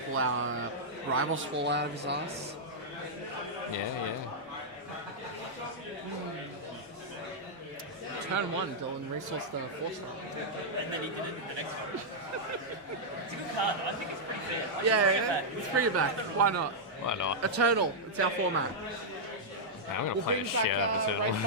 our Rivals Fall out of his ass. Yeah. Turn 1, Dylan resourced the 4-star. And then he did it in the next one. It's a good card, though. I think it's pretty fair. Yeah, let's bring it back. Why not? Why not? Eternal. It's our format. I'm gonna We'll play bring the back shit out of Raid it.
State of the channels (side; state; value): both; normal; correlation -0.07